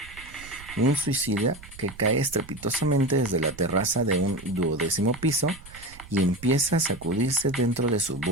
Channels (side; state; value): right; noise; rumble, 19 dB below the sound